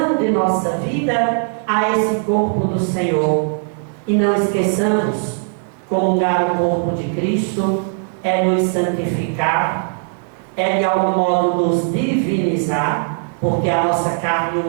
de nossa vida a esse corpo do Senhor. E não esqueçamos, comungar o corpo de Cristo é nos santificar, é de algum modo nos divinizar, porque a nossa carne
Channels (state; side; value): silent; left; digital silence